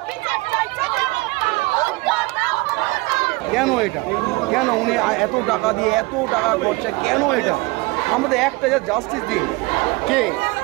কেন এটা, কেন উনি এত টাকা দিয়ে এত টাকা খরচা, কেন এটা? আমাদের একটা যা জাস্টিস দিন, কে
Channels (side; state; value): left; quieter; 23.9 dB